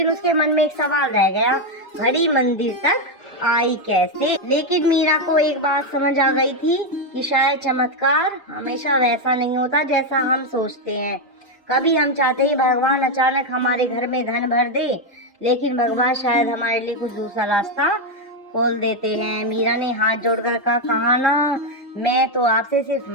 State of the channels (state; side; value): normal; both; correlation 0.04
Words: उसके मन में एक सवाल रह गया, घड़ी मंदिर तक आई कैसे? लेकिन मीरा को एक बात समझ आ गई थी कि शायद चमत्कार हमेशा वैसा नहीं होता जैसा हम सोचते हैं। कभी हम चाहते हैं भगवान अचानक हमारे घर में धन भर दे, लेकिन भगवान शायद हमारे लिए कुछ दूसरा रास्ता खोल देते हैं। मीरा ने हाथ जोड़कर कहा ना, मैं तो आपसे सिर्फ